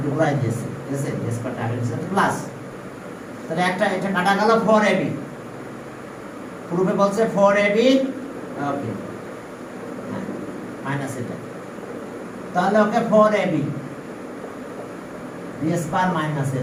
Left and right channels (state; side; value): identical; both; correlation 1.00